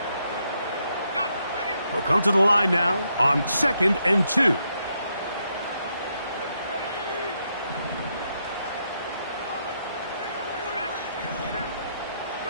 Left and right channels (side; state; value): both; inverted; correlation -0.78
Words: They'll come to the line now on 2nd and 2.